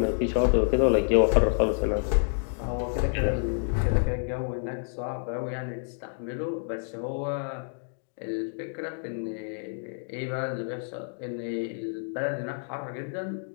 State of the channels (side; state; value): right; silent; digital silence